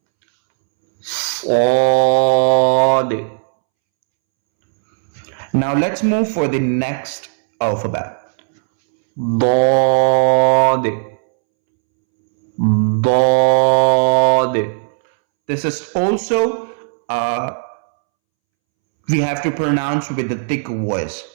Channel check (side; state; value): left; silent; 68 dB below the other